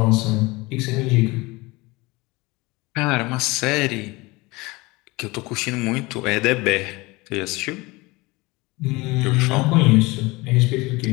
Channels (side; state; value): right; quieter; 23.1 dB